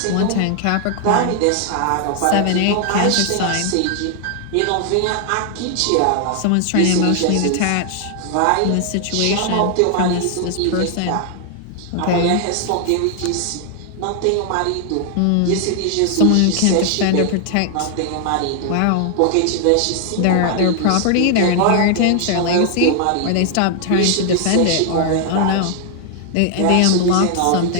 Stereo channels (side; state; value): both; different; correlation 0.00